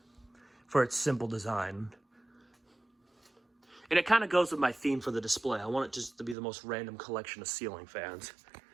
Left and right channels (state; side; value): drops out; left; at 6.4 s